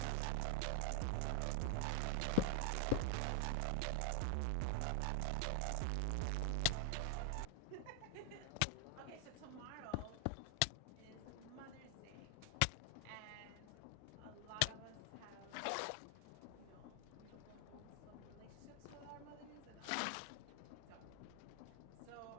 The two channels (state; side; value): different; both; correlation 0.00